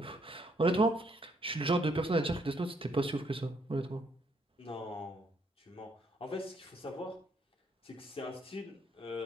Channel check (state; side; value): normal; both; correlation 0.70